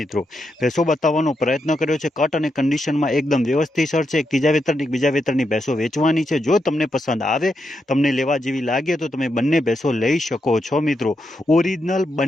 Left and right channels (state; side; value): normal; both; correlation 0.83